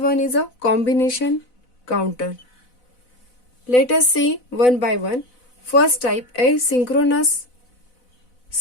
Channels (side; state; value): right; late; 4.0 ms